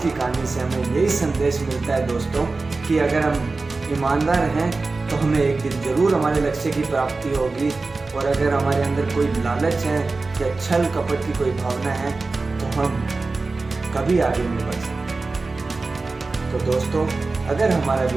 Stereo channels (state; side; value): quieter; left; 3.7 dB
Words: कहानी से हमें यही संदेश मिलता है दोस्तों कि अगर हम ईमानदार हैं तो हमें एक दिन जरूर हमारे लक्ष्य की प्राप्ति होगी, और अगर हमारे अंदर कोई लालच है या छल कपट की कोई भावना है तो हम कभी आगे नहीं बढ़ सकते। तो दोस्तों, अगर हमारा